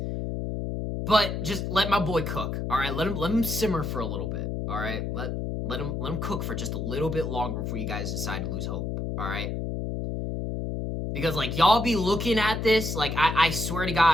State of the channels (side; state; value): left; noise; hum, 3 dB below the sound